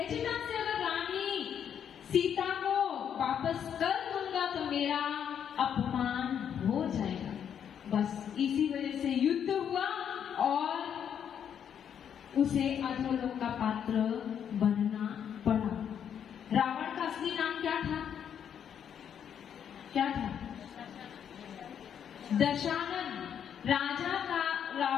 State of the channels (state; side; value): quieter; right; 8.6 dB